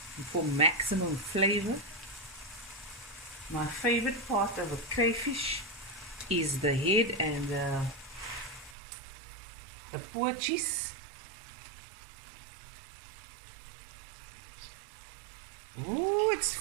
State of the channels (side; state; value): left; drops out; at 8.8 s